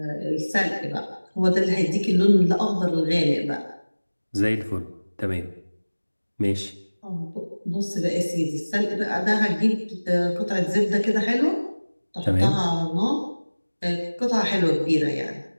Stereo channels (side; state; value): both; inverted; correlation -1.00